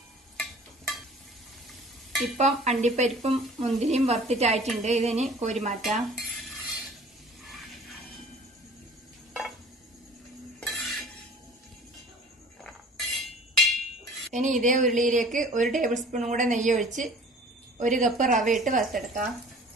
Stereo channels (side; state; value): both; normal; correlation 0.47